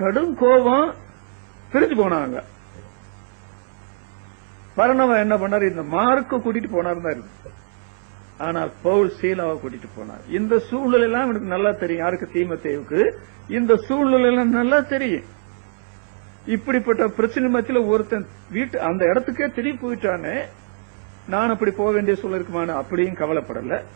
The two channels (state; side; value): silent; left; 65 dB below the other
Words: கடும் கோபம், பிரிஞ்சு போனாங்க. பர்னபா என்ன பண்ணாரு? இந்த மார்க்க கூட்டிட்டு போனார் தான் இருக்கு. ஆனால் பவுல் சீலாவை கூட்டிட்டு போனார். இந்த சூழ்நிலை எல்லாம் எனக்கு நல்லா தெரியும். யாருக்கு? தீமோத்தேயுவுக்கு இந்த சூழ்நிலை எல்லாம் நல்லா தெரியும். இப்படிப்பட்ட பிரச்சனை மத்தியில ஒருத்தன் அந்த இடத்துக்கே திரும்பி போயிட்டானே, நான் அப்படி போக வேண்டிய சூழல் இருக்குமான அப்படியும் கவலைப்படல.